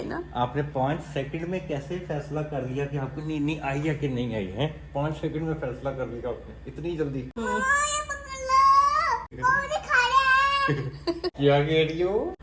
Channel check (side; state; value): both; identical; correlation 1.00